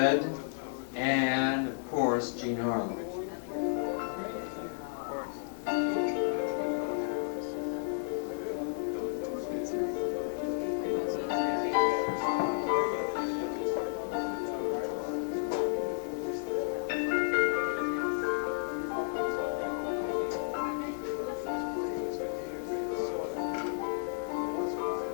and, of course, Gene Harlow.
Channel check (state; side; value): silent; right; digital silence